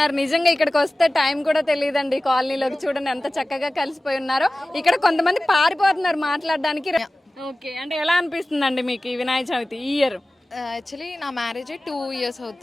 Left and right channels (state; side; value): normal; both; correlation 0.97